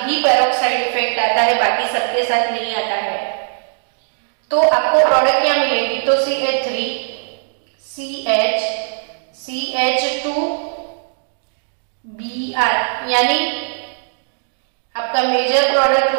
ही पेरोक्साइड इफेक्ट आता है, बाकी सबके साथ नहीं आता है। तो आपको प्रोडक्ट क्या मिलेगी? तो CH3 CH CH2 Br, यानी आपका मेजर प्रोडक्ट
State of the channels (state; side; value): silent; left; digital silence